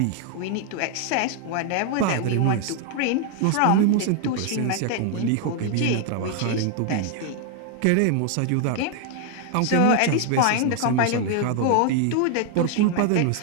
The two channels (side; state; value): both; different; correlation 0.00